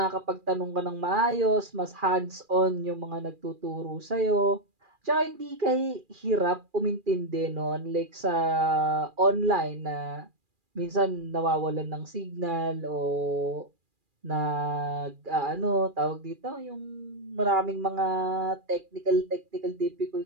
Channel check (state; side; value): late; left; 2.4 ms